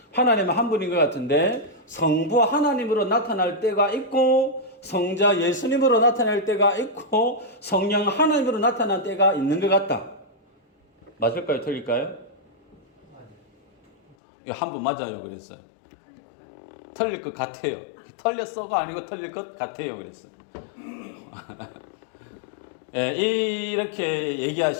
하나님은 한 분인 것 같은데 성부 하나님으로 나타날 때가 있고 성자 예수님으로 나타날 때가 있고 성령 하나님으로 나타날 때가 있는 것 같다. 맞을까요? 틀릴까요? 한 분 맞아요 그랬어요. 틀릴 것 같아요. 틀렸어가 아니고 틀릴 것 같아요 그랬어요. 이렇게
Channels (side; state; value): right; drops out; at 14.2 s